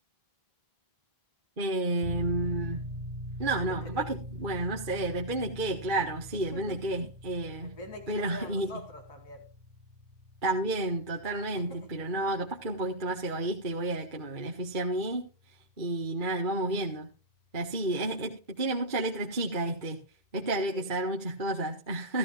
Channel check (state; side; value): late; left; 2.2 ms